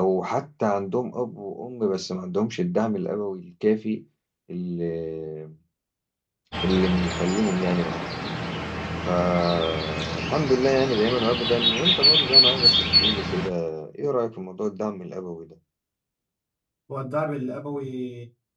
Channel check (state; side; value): identical; both; correlation 1.00